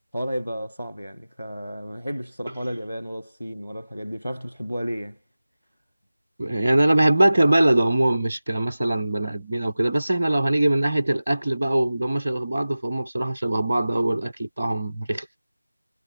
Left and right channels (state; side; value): inverted; both; correlation -0.96